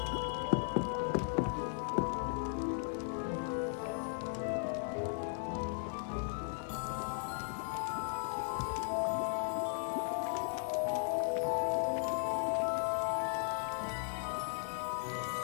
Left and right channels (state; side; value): silent; right; 53 dB below the other